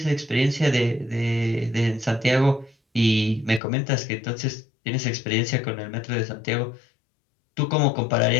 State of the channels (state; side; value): drops out; right; at 3.6 s